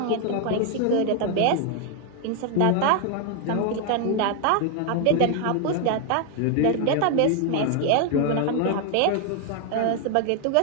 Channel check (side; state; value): both; different; correlation 0.00